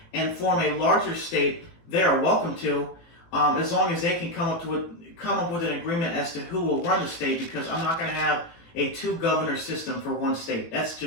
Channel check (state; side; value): late; right; 18 ms